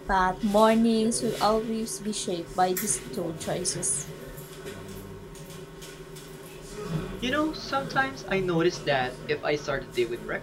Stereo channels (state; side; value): identical; both; correlation 1.00